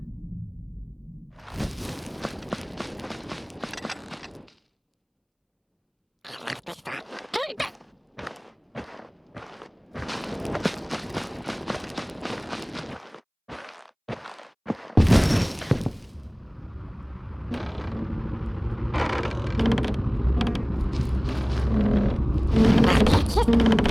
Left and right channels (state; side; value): identical; both; correlation 1.00